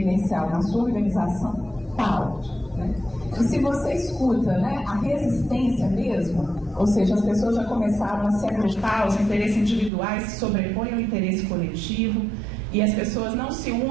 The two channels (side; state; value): left; drops out; at 9.9 s